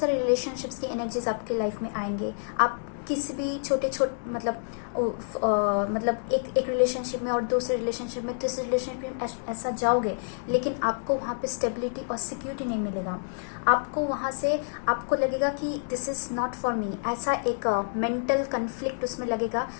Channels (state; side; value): silent; right; digital silence